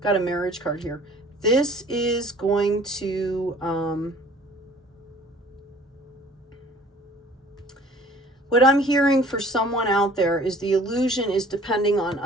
got a marriage card here. This is going to, what I'm hearing for someone out there is the illusion is depending on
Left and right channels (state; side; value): normal; both; correlation 0.51